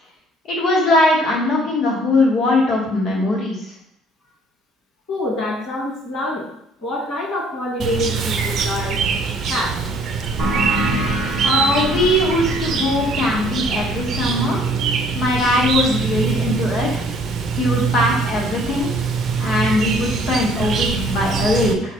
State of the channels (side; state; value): both; normal; correlation 0.58